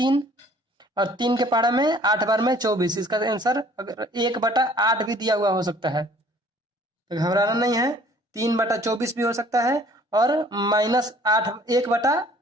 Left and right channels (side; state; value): both; normal; correlation 0.55